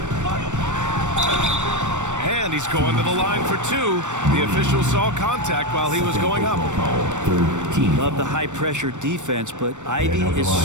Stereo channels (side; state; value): left; late; 0.85 ms